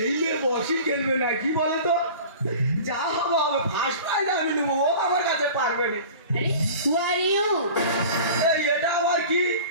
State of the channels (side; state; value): both; inverted; correlation -0.40